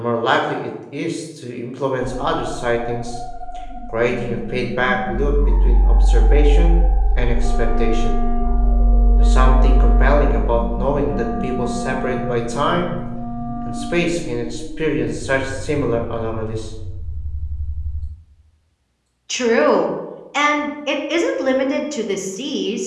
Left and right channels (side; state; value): both; identical; correlation 1.00